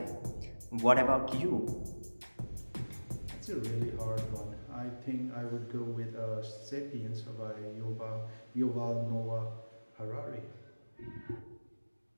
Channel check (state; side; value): inverted; both; correlation -1.00